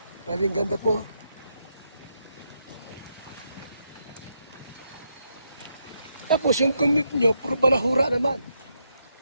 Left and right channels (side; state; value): both; inverted; correlation -0.80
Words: Grabing ganda po. Tapos yung commute nyo, puro balahura naman.